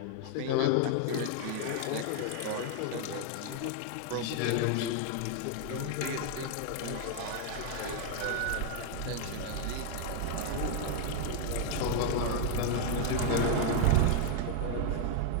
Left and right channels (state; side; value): different; both; correlation 0.00